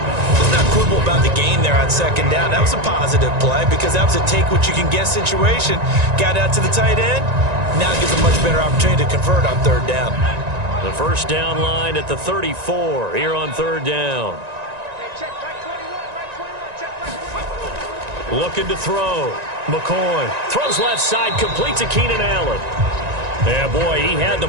Let's not quibble about the gain there on second down. That was a positive play because that was a take-what-you-can-get situation. Got out to the tight end. Now it gives a much better opportunity to convert on third down. The first down line at the 34 here on third down. Looking to throw. McCoy throws left side, complete to Keenan Allen. Yeah, boy, he had the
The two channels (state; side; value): late; left; 1.9 ms